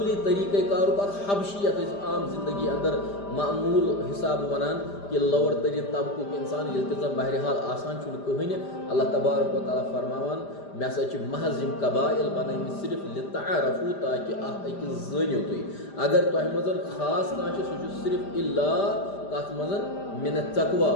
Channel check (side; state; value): right; late; 5.0 ms